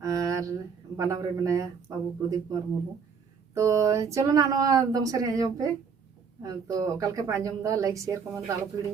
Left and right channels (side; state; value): left; quieter; 6.1 dB